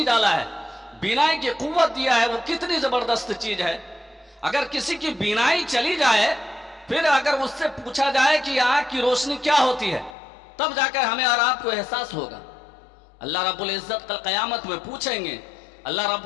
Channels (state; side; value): drops out; right; at 10.2 s